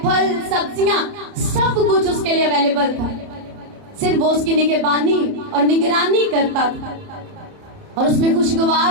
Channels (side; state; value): left; late; 31 ms